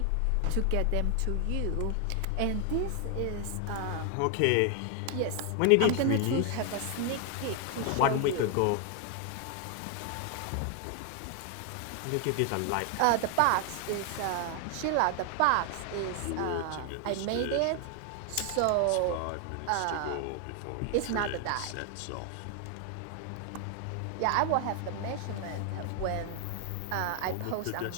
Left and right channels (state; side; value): different; both; correlation 0.00